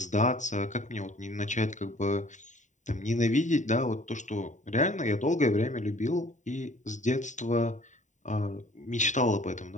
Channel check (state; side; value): late; right; 0.36 ms